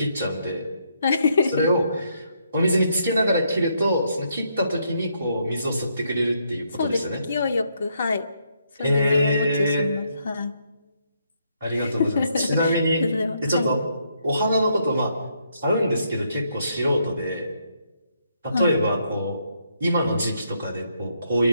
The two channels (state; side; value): inverted; both; correlation -0.75